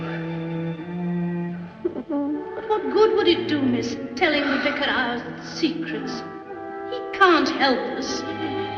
But what good would it do, miss, telling the vicar our secrets? He can't help us.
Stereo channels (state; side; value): identical; both; correlation 1.00